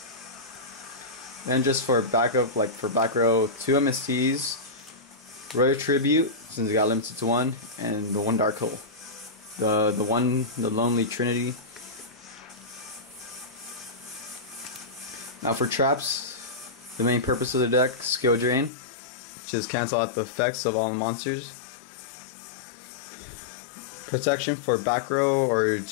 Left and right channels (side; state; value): right; drops out; at 18.7 s